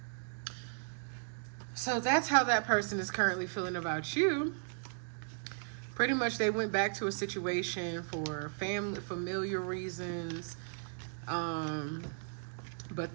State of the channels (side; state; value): left; silent; digital silence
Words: So that's how that person is currently feeling about you. Pretty much they went back to a situation for familiar reasons, but